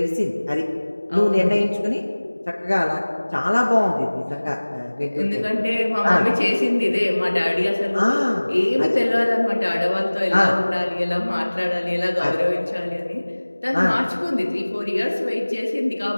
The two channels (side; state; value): both; inverted; correlation -1.00